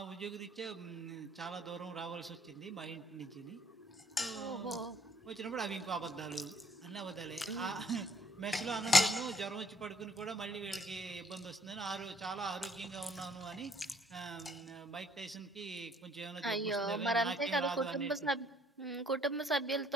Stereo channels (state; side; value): normal; both; correlation 0.63